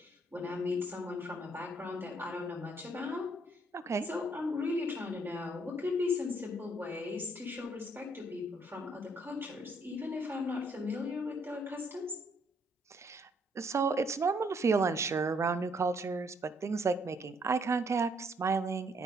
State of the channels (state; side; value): normal; both; correlation 0.68